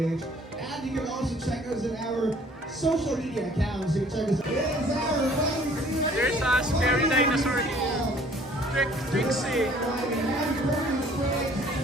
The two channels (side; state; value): both; normal; correlation 0.55